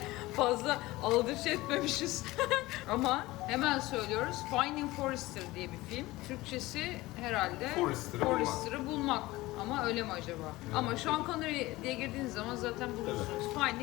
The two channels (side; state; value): right; quieter; 19.2 dB